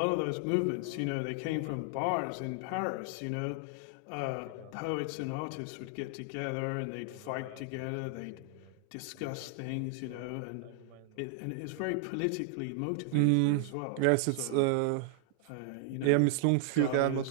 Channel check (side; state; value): both; different; correlation 0.00